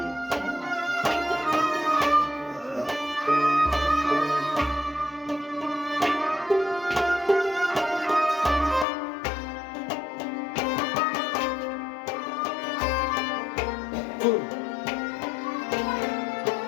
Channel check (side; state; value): right; drops out; at 8.8 s